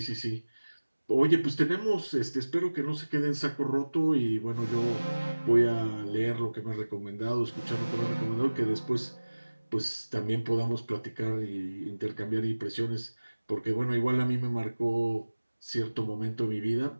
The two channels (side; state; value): both; inverted; correlation -1.00